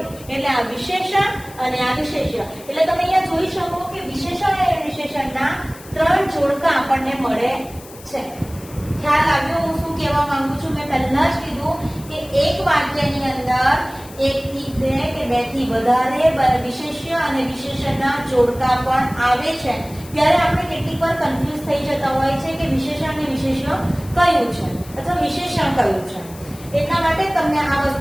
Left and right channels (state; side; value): noise; left; hiss, 20 dB below the sound